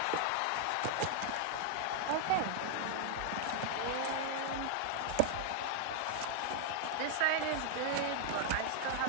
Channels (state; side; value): different; both; correlation -0.01